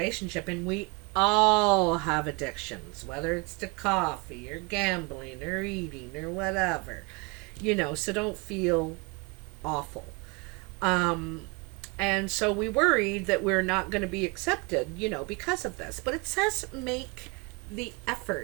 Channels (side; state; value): left; quieter; 29.9 dB